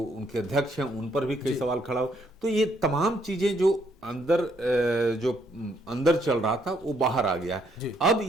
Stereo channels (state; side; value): normal; both; correlation 0.71